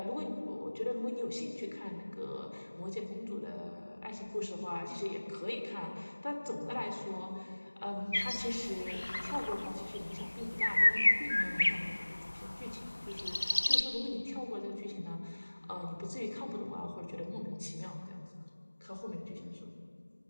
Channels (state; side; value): inverted; both; correlation -1.00